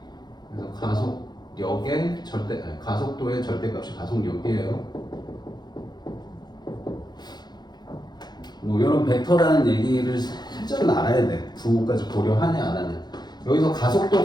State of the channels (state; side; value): late; right; 0.20 ms